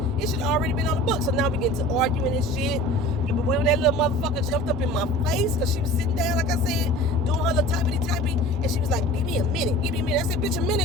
it should have already been on the book. So now we get to arguing and shit. But when that little motherfucker jumped up in my face, because she was sitting down, like I said, doing her little typey, and she was like, give me a minute. I said, bitch, a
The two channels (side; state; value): both; normal; correlation 0.42